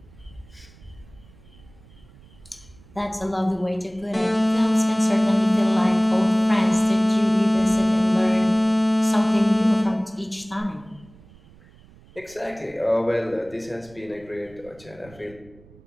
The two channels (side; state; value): right; noise; rumble, 25 dB below the sound